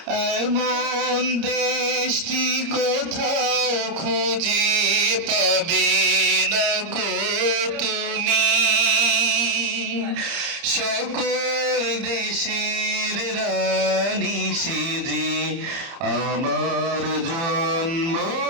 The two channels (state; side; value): late; left; 30 ms